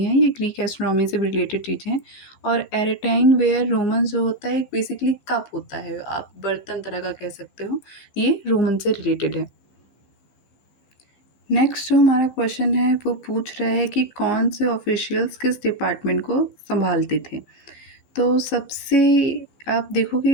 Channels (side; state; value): right; late; 14 ms